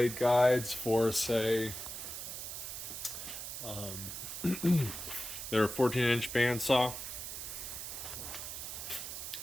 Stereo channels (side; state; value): right; noise; hiss, 7 dB below the sound